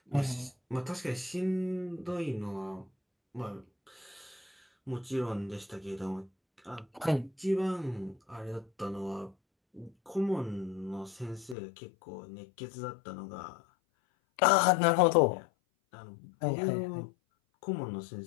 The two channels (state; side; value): drops out; right; at 11.6 s